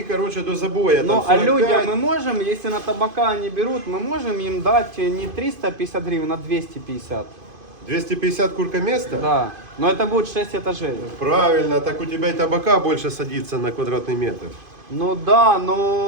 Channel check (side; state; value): left; late; 2.5 ms